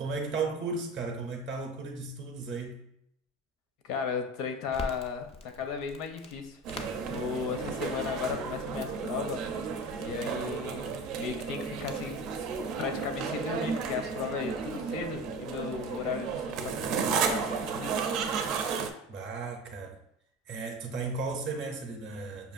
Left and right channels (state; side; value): normal; both; correlation 0.32